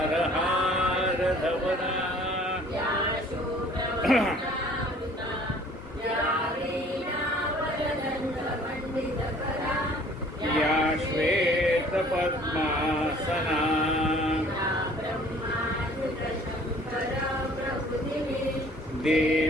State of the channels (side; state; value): both; normal; correlation 0.54